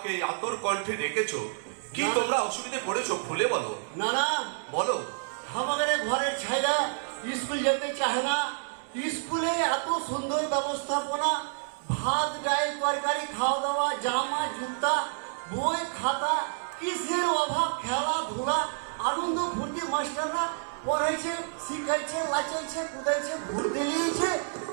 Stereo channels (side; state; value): left; silent; digital silence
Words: এই আতর কণ্ঠে ডেকেছো? কি তোমরা অসুবিধায় পড়েছো খুলে বলো। না না, বলো। আমাদের ঘরের ছাইরা স্কুল যেতে চায় না। স্কুলে এত সুন্দর ব্যবস্থাপনা, ভাত ডাল তরকারি খাওয়া দাওয়া, জামা জুতা, বই খাতা, কিসের অভাব? খেলাধুলা, আনন্দ ফুর্তি, মাস্টাররা পড়াইছে, শিখাইছে, লাচাইছে, কুদাইছে, ঘুরতে নিয়েছে,